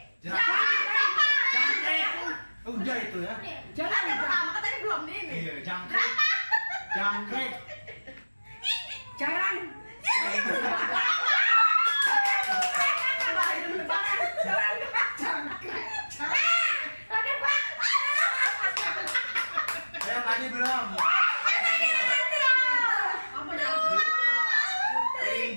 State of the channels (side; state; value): both; inverted; correlation -1.00